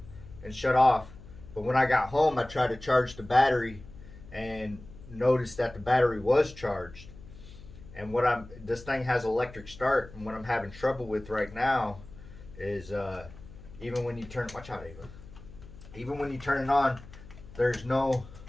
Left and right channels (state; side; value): noise; left; hum, 18 dB below the sound